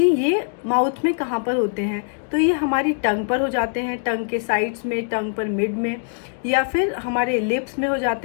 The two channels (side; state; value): right; silent; digital silence